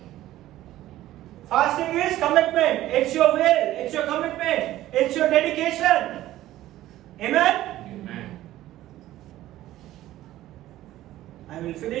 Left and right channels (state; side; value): quieter; left; 14.6 dB